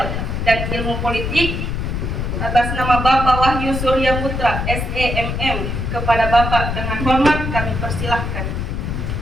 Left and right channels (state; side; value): noise; left; rumble, 2 dB below the sound